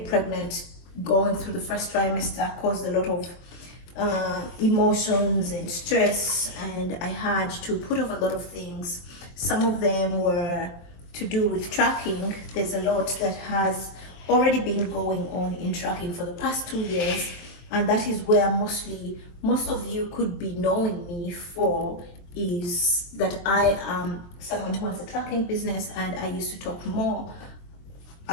pregnant, going through the first trimester caused a lot of emotions and stress, and I had to put off a lot of things. Some of them were to do with tracking. There's a lot that has already been going on in tracking for the past 2 years, and that is where most of you could be knowing me for, is that I am someone who has a tracking business, and I used to talk more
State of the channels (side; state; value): right; late; 23 ms